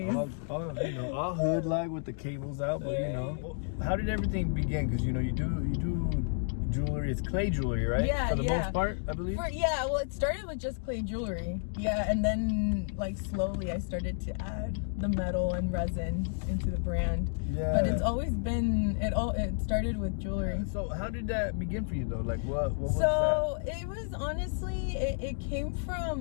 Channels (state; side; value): silent; right; digital silence